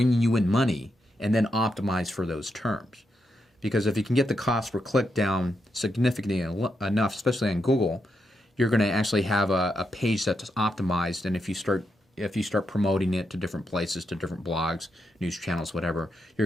you in money, and then optimize for those terms. Because if you can get the cost per click down significantly enough, especially on Google, you're going to actually have a page that's optimized, and if you start promoting it to different places, to different blogs, news channels, whatever,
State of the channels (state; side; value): normal; both; correlation 0.83